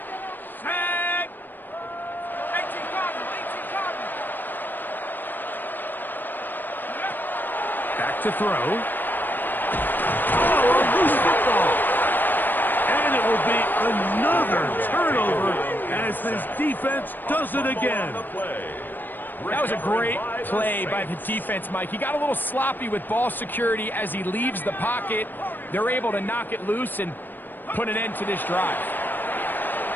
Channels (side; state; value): right; late; 0.091 ms